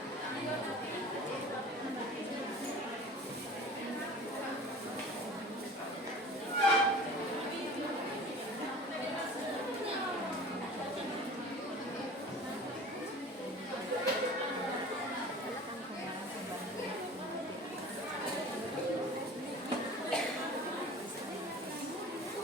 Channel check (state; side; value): normal; both; correlation 0.41